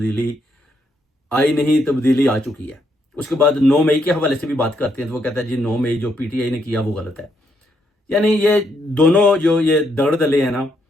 आई नहीं, तब्दीली आ चुकी है। उसके बाद 9 मई के हवाले से भी बात करते हैं तो वो कहता है जी 9 मई जो पीटीआई ने किया वो गलत है। यानी ये दोनों जो ये दगड़ दले हैं ना,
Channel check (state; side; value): normal; both; correlation 0.76